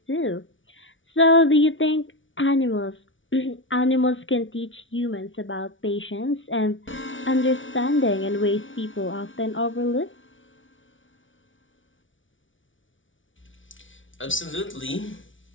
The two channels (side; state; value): right; late; 0.56 ms